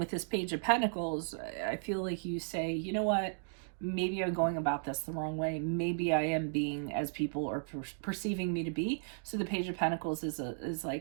this Page of Pentacles, I feel like you say, you know what? Maybe I'm going about this the wrong way. Maybe I am being as people are perceiving me to be. So the Page of Pentacles is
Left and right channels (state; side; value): silent; left; digital silence